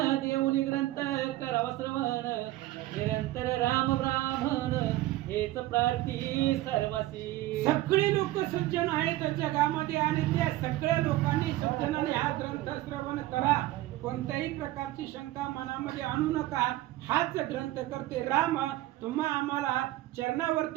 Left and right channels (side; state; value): left; quieter; 16.3 dB